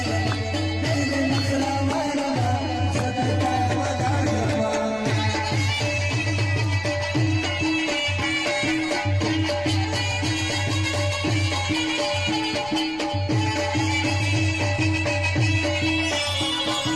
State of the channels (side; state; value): left; noise; rumble, 20 dB below the sound